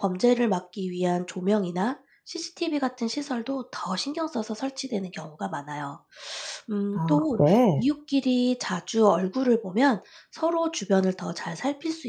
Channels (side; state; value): both; identical; correlation 1.00